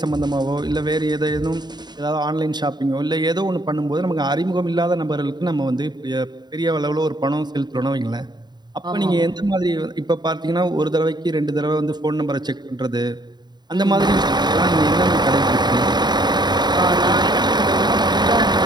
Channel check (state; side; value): late; left; 0.21 ms